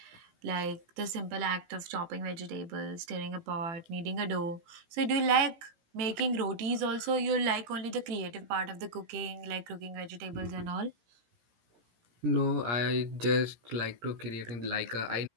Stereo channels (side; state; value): left; late; 18 ms